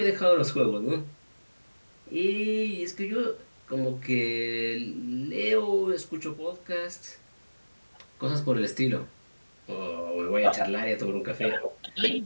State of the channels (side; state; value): both; inverted; correlation -1.00